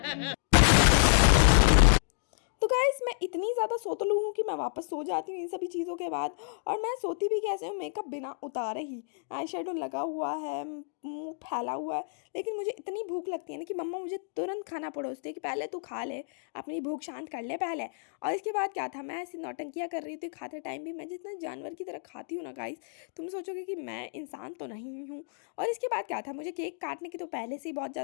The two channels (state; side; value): silent; right; digital silence